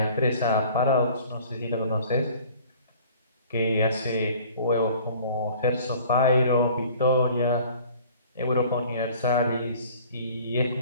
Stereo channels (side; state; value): both; inverted; correlation -0.51